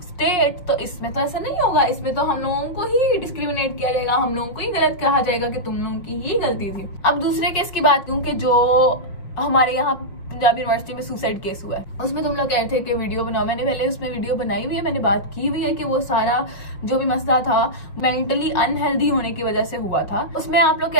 स्टेट, तो इसमें तो ऐसा नहीं होगा। इसमें तो हम लोगों को ही डिस्क्रिमिनेट किया जाएगा, हम लोगों को ही गलत कहा जाएगा कि तुम लोगों की ही गलती थी। अब दूसरे केस की बात करूं कि जो हमारे यहाँ पंजाब यूनिवर्सिटी में सुसाइड केस हुआ है, उसमें तुम लोग कह रहे थे कि वीडियो बनाओ। मैंने पहले उसमें वीडियो बनाई हुई है, मैंने बात की हुई है कि वो सारा जो भी मसला था मेंटली अनहेल्दी होने की वजह से हुआ था। उसमें आप लोग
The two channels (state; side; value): late; right; 5.7 ms